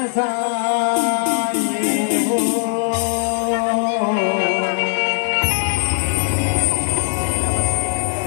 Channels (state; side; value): silent; right; digital silence